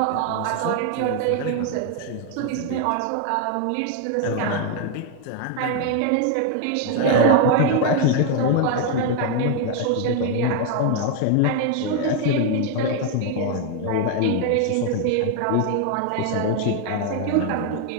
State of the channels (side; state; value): both; different; correlation 0.01